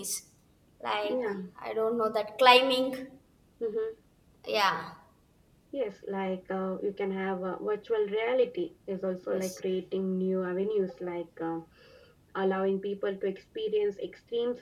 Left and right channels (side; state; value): both; identical; correlation 1.00